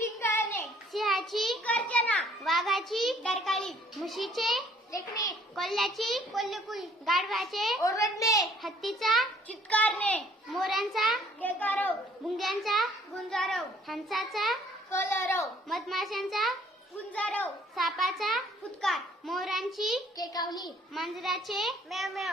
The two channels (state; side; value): normal; both; correlation 0.59